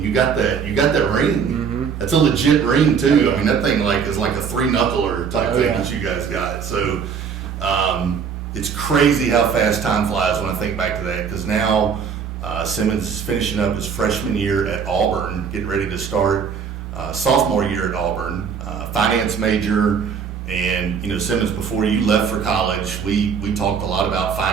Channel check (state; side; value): quieter; left; 6.6 dB